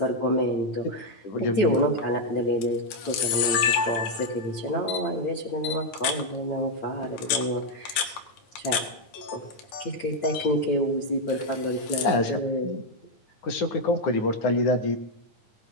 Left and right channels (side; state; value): right; late; 10 ms